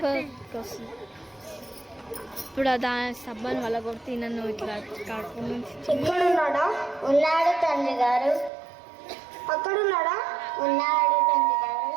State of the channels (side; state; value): left; drops out; at 8.5 s